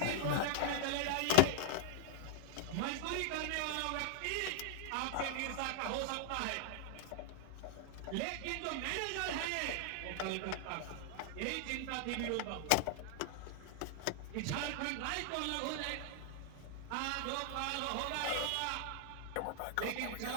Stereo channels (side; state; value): both; different; correlation -0.01